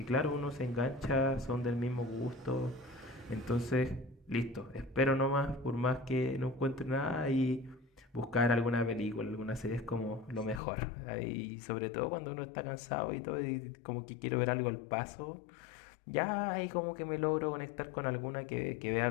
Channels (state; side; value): drops out; right; at 10.6 s